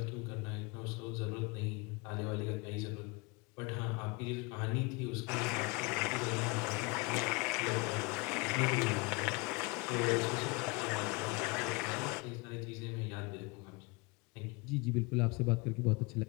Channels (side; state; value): right; quieter; 27.7 dB